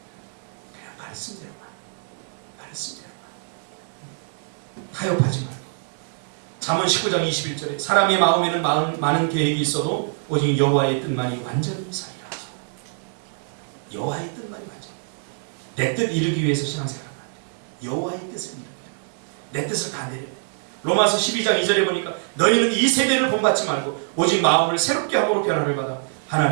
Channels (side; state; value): left; silent; 56 dB below the other